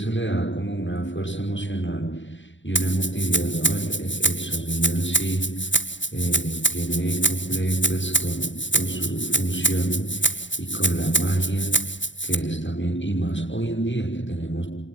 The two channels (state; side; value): late; right; 0.54 ms